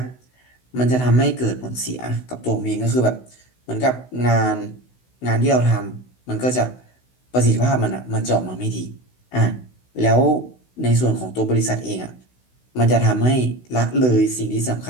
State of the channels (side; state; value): right; late; 16 ms